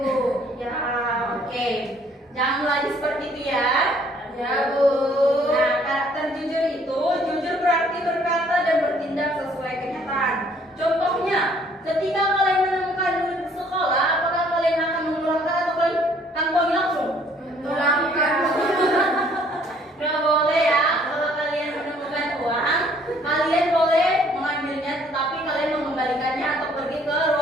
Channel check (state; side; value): normal; both; correlation 0.61